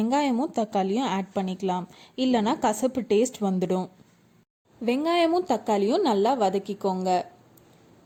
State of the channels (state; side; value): identical; both; correlation 1.00